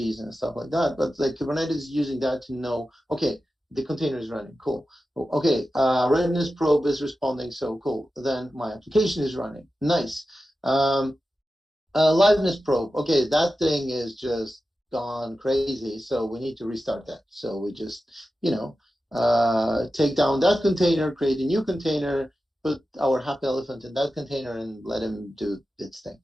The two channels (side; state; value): both; normal; correlation 0.93